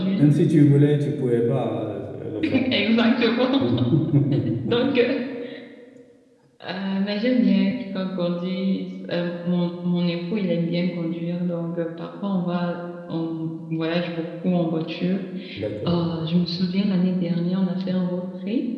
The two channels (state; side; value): identical; both; correlation 1.00